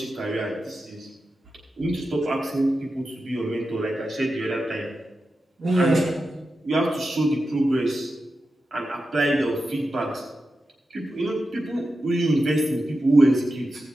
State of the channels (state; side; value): normal; both; correlation 0.91